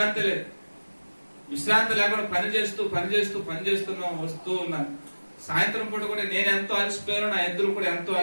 లేదు, విశ్రాంతి లేకుండా పనిచేస్తున్నా వస్తూ ఉన్నాను. సాయంత్రం పూట కూడా నేను ఎంతో అలసిపోయాను, నా ఎద్దులు కూడా ఎంతో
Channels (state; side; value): inverted; both; correlation -1.00